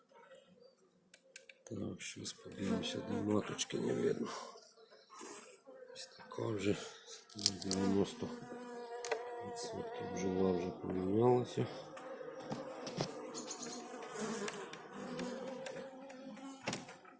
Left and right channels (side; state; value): both; identical; correlation 1.00